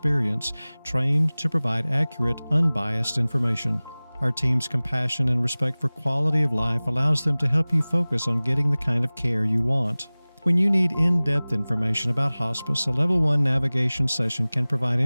trained to provide accurate, unbiased information. Our team's compassion and respect for quality of life allows them to help you focus on getting the kind of care you want. When you need in-depth information about hospice, a Level 1 navigation session can provide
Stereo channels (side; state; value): both; inverted; correlation -0.99